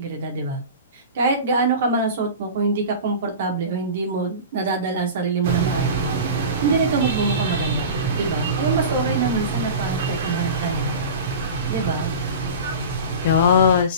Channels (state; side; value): inverted; both; correlation -0.32